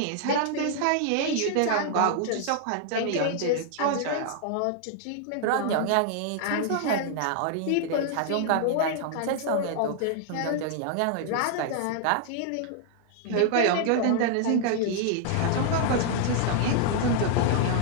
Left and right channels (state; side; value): different; both; correlation -0.01